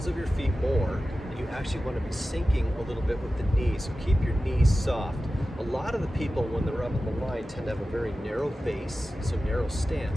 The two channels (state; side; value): normal; both; correlation 0.94